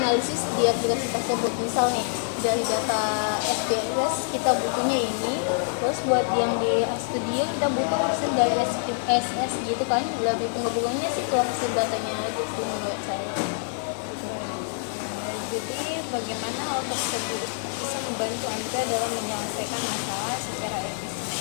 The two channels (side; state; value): right; silent; 61 dB below the other